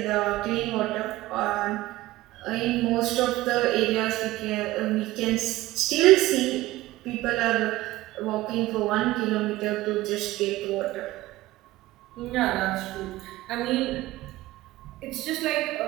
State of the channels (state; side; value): quieter; left; 17.4 dB